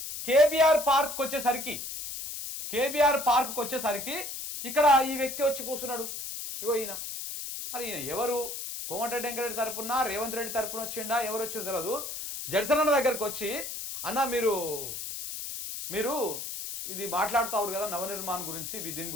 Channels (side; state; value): left; noise; hiss, 7 dB below the sound